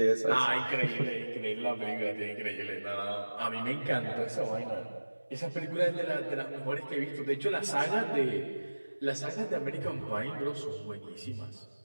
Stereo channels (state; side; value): inverted; both; correlation -1.00